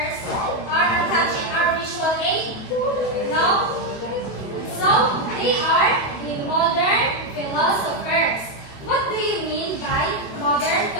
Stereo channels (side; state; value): right; late; 28 ms